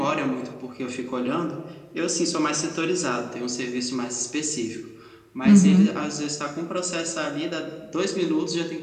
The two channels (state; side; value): identical; both; correlation 1.00